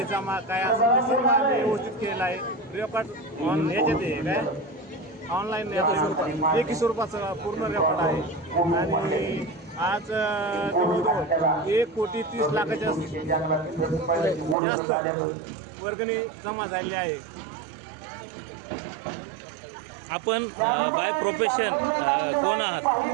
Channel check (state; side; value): drops out; left; at 14.6 s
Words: जमा काय असं ते सर्व आम्ही व्यवस्थित केलेलं आहे. रेकॉर्ड ह्याच्यात आहे काय ऑनलाईन लेखी स्वरूपाचं पूर्ण रेकॉर्ड आहे आणि आज जवळजवळ 1,30,00,000 जास्त वर्गणी जमा झालेली आहे. आपण बाय प्रोफेशन कोण आहात?